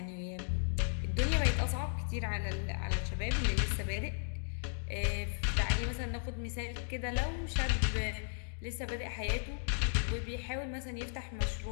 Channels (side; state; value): right; silent; digital silence